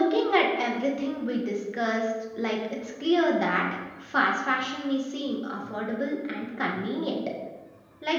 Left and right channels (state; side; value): identical; both; correlation 1.00